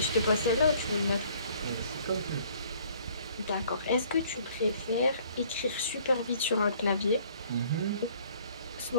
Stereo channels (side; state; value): both; inverted; correlation -0.58